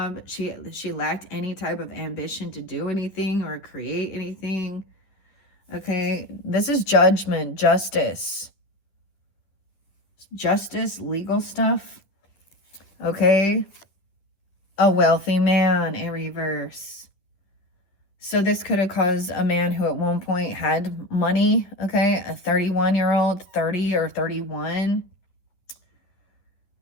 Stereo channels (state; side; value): late; right; 10 ms